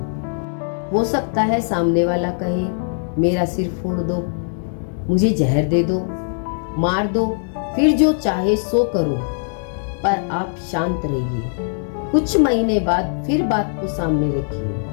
हो सकता है सामने वाला कहे मेरा सिर फोड़ दो, मुझे जहर दे दो, मार दो, फिर जो चाहे सो करो, पर आप शांत रहिए। कुछ महीने बाद फिर बात को सामने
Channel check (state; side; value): silent; right; digital silence